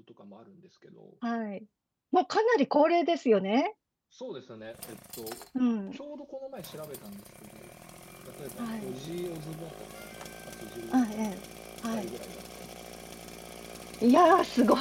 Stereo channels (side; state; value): both; identical; correlation 1.00